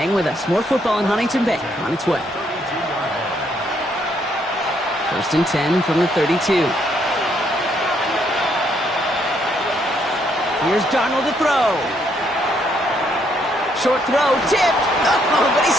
with us. More football in Huntington Bay on its way. 1st and 10 from the 32. Here's Darnold to throw. Short throw, tipped. Oh, but he's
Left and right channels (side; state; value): both; normal; correlation 0.72